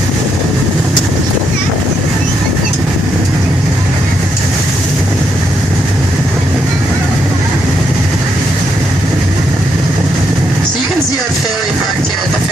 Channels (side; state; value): both; normal; correlation 0.78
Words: See our ferry parked here at the